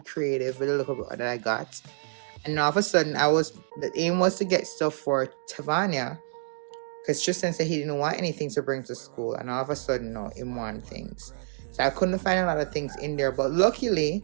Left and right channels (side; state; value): left; silent; digital silence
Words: with a little bit that I got. And now all of a sudden, the aim was to get stuff for Tavania, because Tristan said he didn't want anything to bring to school, and all of a sudden, no, he wanted things. So I couldn't find a lot of things in there, but luckily,